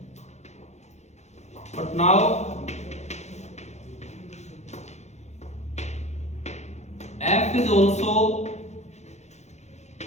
but now F is also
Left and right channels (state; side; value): late; right; 0.33 ms